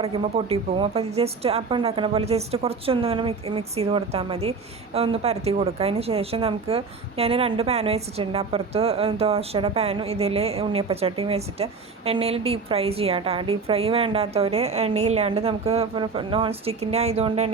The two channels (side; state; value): left; quieter; 4.6 dB